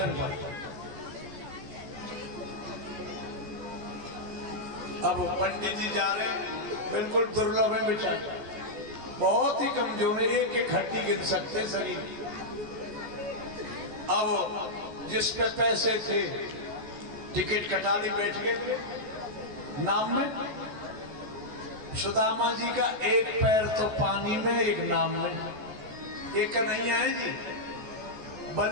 पर। अब पंडित जी जा रहे हैं, बिल्कुल दुर्लभ है बेचारे, बहुत ही कमजोर है, एक एक हड्डी गिन सकते शरीर। अब जिस पे पैसे थे टिकट कटा ली, बैठ गए नाम में। सुदामा जी का एक पैर तो पानी में, एक नाम में। एक कन्हैया है जी,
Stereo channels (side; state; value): left; late; 14 ms